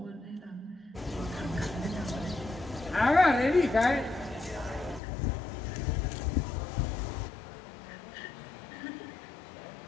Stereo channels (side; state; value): right; drops out; at 5.0 s